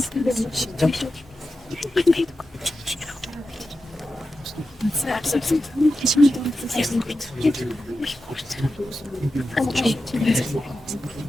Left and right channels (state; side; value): normal; both; correlation 0.91